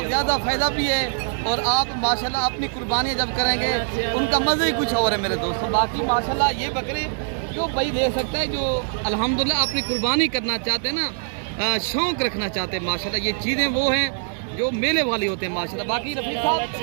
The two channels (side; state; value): left; silent; 63 dB below the other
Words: ज़्यादा फ़ायदा भी है और आप माशाल्लाह अपनी कुर्बानी जब करेंगे उनका मज़ा ही कुछ और है मेरे दोस्तों। बाकी माशाल्लाह ये बकरे जो भाई ले सकता है जो अल्हम्दुलिल्लाह अपनी कुर्बानी करना चाहते हैं ना, शौक़ रखना चाहते हैं माशाल्लाह, ये चीज़ें वो हैं जो मेले वाली होते हैं माशाल्लाह। बाकी रफीक साहब